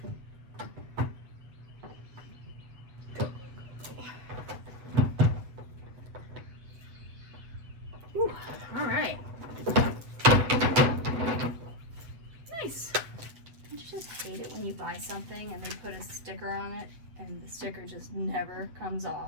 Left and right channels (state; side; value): late; left; 7.9 ms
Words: Go, go, go, go. Ooh, all right. Nice. Don't you just hate it when you buy something and they put a sticker on it and the sticker just never comes